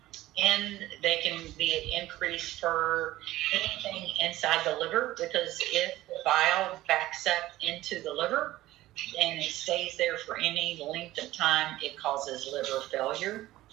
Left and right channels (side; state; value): left; quieter; 16.1 dB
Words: and they can be increased for anything inside the liver, because if the bile backs up into the liver and it stays there for any length of time, it causes liver failure